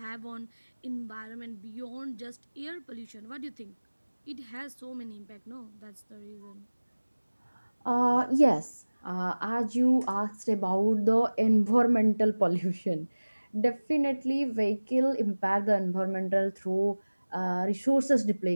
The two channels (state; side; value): inverted; both; correlation -1.00